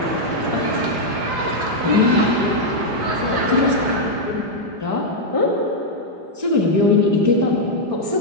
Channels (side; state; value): left; late; 5.0 ms